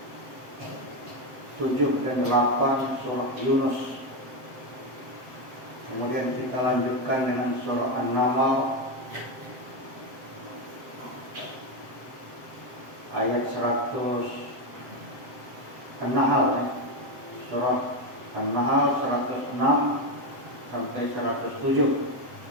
7 dan 8 surah Yunus. Kemudian kita lanjutkan dengan surah An-Naml ayat 100 An-Nahl, surah An-Nahl 106 sampai 107.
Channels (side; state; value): left; late; 7.7 ms